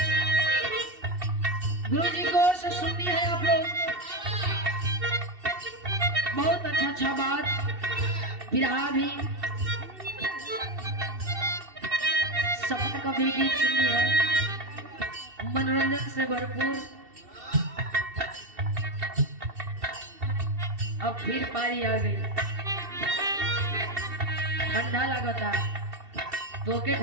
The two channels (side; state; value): left; late; 2.7 ms